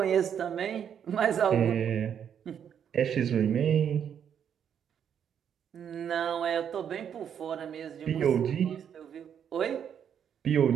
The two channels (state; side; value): quieter; left; 8.5 dB